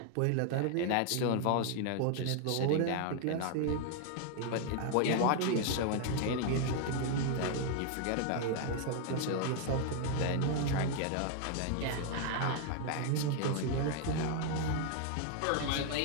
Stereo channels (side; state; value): both; different; correlation 0.00